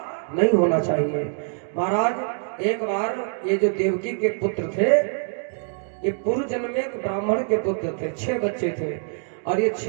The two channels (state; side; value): silent; left; 62 dB below the other